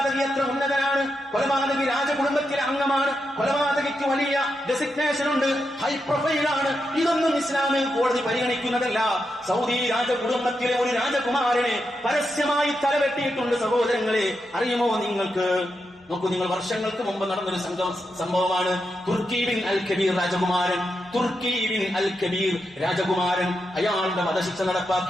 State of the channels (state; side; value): normal; both; correlation 0.86